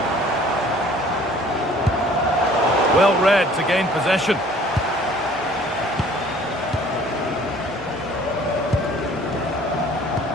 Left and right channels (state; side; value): normal; both; correlation 0.53